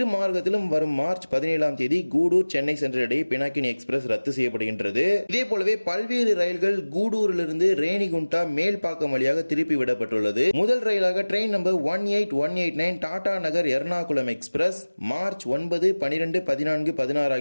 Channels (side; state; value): both; inverted; correlation -1.00